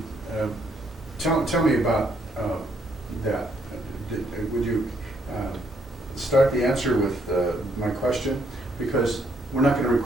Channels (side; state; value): both; normal; correlation 0.71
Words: Tell me about that. Would you start the answer with my question? Because we're not going to